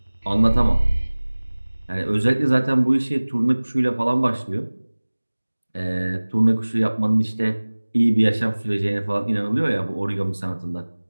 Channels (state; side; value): inverted; both; correlation -1.00